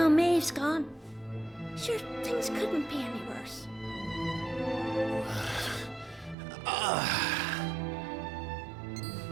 Maeve's gone. Sure, things couldn't be any worse.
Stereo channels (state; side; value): drops out; left; at 6.4 s